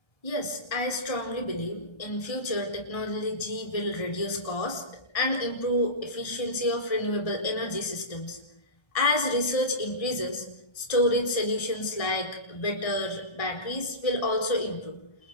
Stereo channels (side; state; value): right; late; 1.3 ms